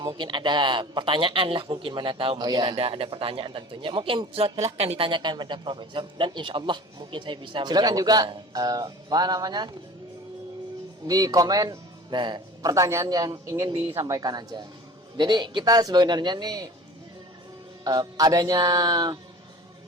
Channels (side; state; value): both; normal; correlation 0.41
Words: mungkin ada pertanyaan lah, mungkin mana tahu mungkin ada pertanyaan tentunya. Mungkin silahkan ditanyakan pada profesor, dan insya Allah mungkin saya bisa silakan juga apa namanya, di komen pertanyaan yang ingin disampaikan aja. Jadi kita sebenarnya nih adanya